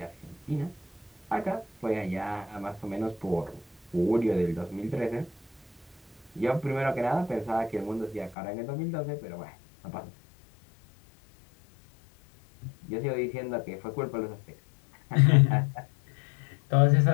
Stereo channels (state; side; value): drops out; right; at 8.3 s